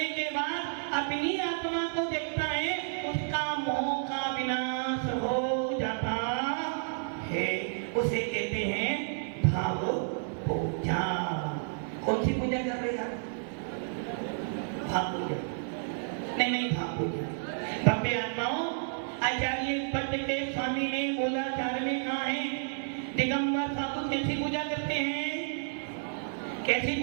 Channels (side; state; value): left; silent; 57 dB below the other